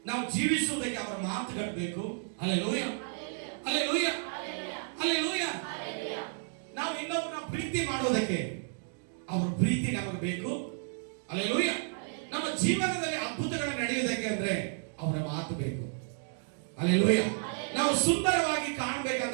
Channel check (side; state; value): left; silent; digital silence